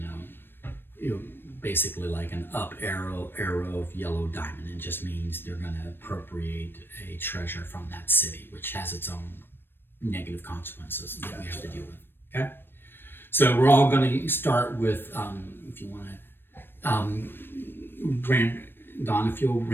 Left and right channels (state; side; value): late; right; 0.099 ms